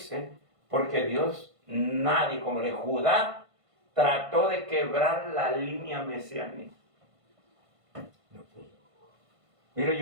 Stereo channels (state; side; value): late; left; 1.5 ms